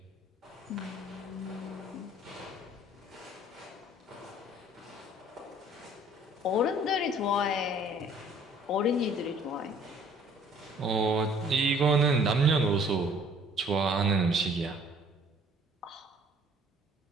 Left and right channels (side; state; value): both; normal; correlation 0.56